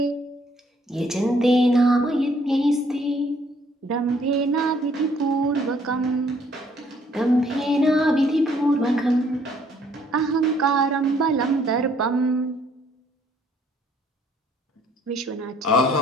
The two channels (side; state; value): both; normal; correlation 0.64